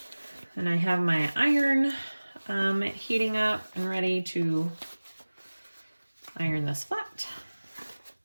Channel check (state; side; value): inverted; both; correlation -1.00